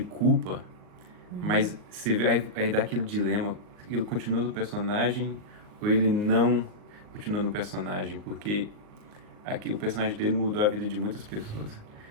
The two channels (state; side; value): late; left; 38 ms